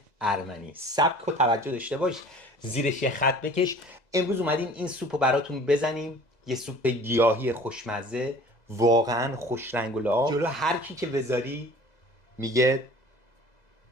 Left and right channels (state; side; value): late; right; 2.0 ms